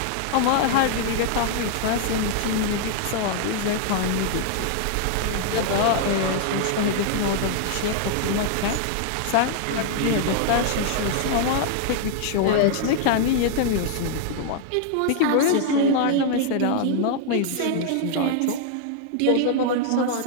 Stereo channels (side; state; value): both; different; correlation -0.01